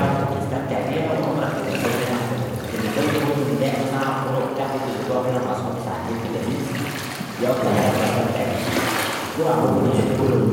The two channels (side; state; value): both; identical; correlation 1.00